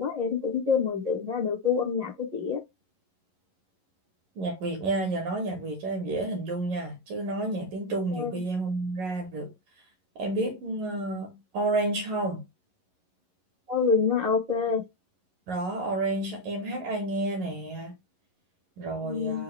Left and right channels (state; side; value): late; left; 11 ms